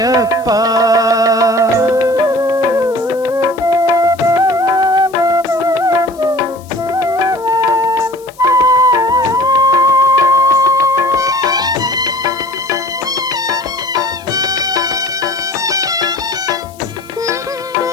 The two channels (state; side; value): noise; left; hiss, 25 dB below the sound